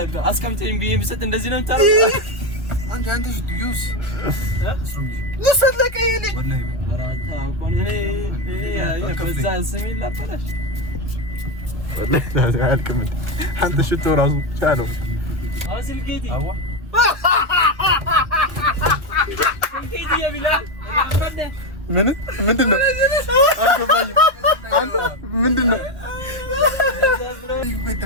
አስቀምጠኝ ቢሊየን ብሰጥ እንደዚህ ነው የምታረው አንተ ዩስ ለሰለቀ የኔ ወላሂ እኔ ከዛ ስሜ ላፈራሽ አንተ ሽቶ ራሱ ቻለው አስልኬቲ አዋ ኬቲ ያቢላል ምንድነው? ምንድነው?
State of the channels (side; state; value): left; late; 1.2 ms